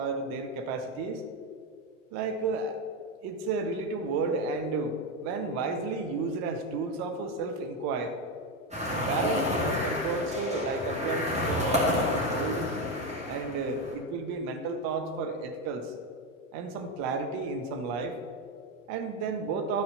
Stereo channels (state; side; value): normal; both; correlation 0.11